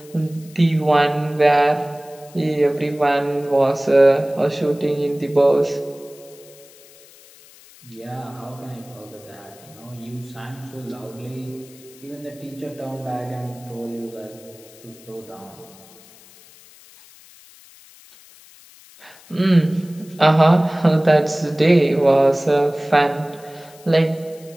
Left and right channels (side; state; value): left; noise; hiss, 24 dB below the sound